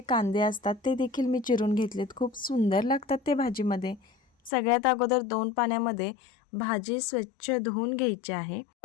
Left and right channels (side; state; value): right; drops out; at 4.5 s